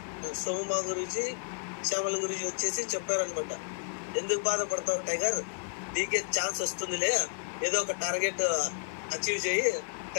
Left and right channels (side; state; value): right; silent; digital silence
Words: సోము మహా గురూజీ, శ్యామల గురించి వచ్చేసి చెప్పారనమాట, ఎందుకు బాధపడతావు టైగర్, నీకే ఛాన్స్ వస్తుందిలే, ఏదో ఒక టార్గెట్ అచీవ్ చేయి,